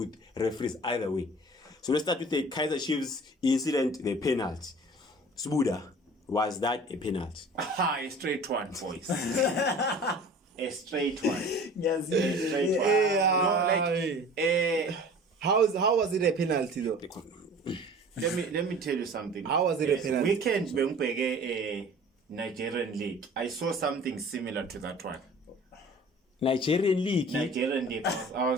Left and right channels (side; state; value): both; normal; correlation 0.44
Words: referees either way. So let's start with the Kaizer Chiefs incident, the penalty. Sbuda, was that a penalty? A straight one, boys. A straight one. Yes, A straight one. How was it a penalty though? Let me tell you something. How was it a penalty? Weekend a Nigerian league. I saw something similar to that one. Nigerian league. I